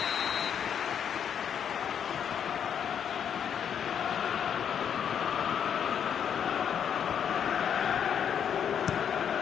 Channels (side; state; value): right; quieter; 8.3 dB